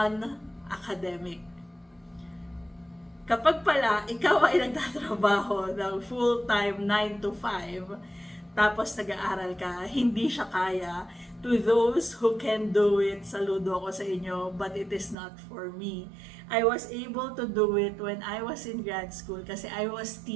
Kapag pala, ikaw ay nagtatrabaho ng full-time 9 to 5, tapos nag-aaral ka, hindi siya kaya. To those who can do it, saludo ako sa inyo, but it is not for me. I was able to do it when I was in grad school kasi I was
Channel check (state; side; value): drops out; left; at 15.2 s